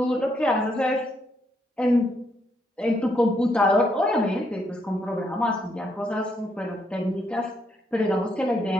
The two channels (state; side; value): normal; both; correlation 0.75